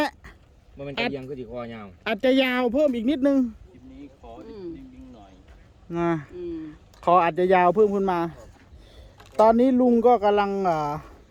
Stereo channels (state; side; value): identical; both; correlation 1.00